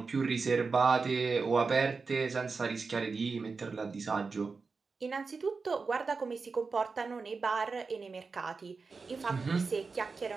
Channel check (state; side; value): quieter; left; 4.5 dB